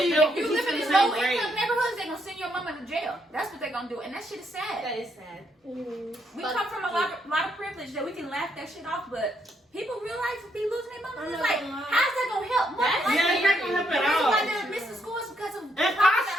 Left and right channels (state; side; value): normal; both; correlation 0.75